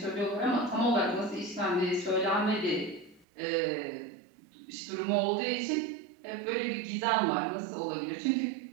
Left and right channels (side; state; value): left; drops out; at 3.2 s